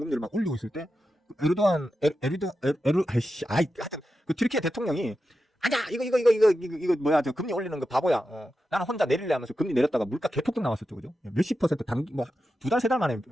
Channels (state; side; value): normal; both; correlation 0.90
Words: 막 올리고 있을 때 하여튼 그 튀르키예 대통령이 아니야 이거 뭐야, 저 금리 올리는 거 바보야. 나는 혼자 내릴래 하면서 금리 내렸다가 물가 개폭등 나왔었죠, 그죠? 몇십 퍼센트 뭐 2달 3달 만에